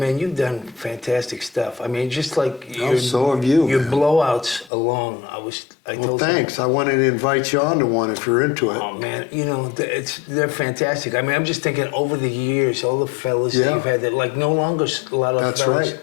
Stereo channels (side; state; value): right; drops out; at 4.7 s